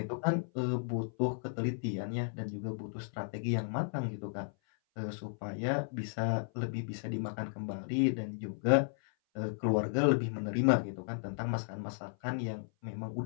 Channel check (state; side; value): silent; right; 55 dB below the other